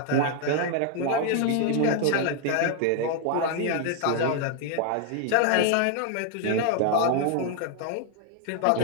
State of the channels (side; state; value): both; different; correlation 0.00